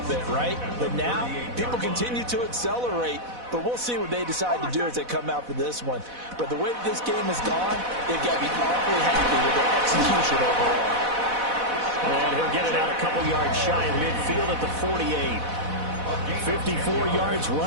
bit, right? But now, people continue to accelerate. But we'll see what they decide to do as they come out for this one. But the way that this game has gone, they've got to be awfully happy with their execution overall. And he'll get it out a couple yards shy of midfield at the 48. 54 yards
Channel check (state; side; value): late; left; 4.1 ms